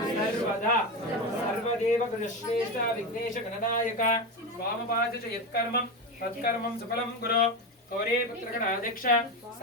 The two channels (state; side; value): normal; both; correlation 0.17